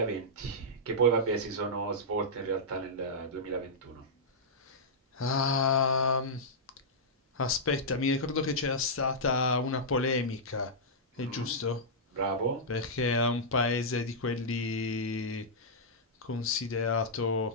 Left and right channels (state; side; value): normal; both; correlation -0.11